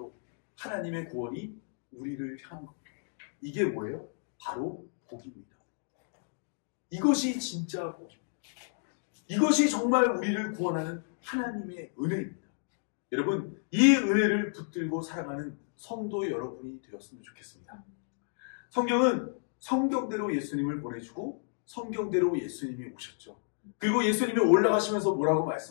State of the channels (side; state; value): right; silent; digital silence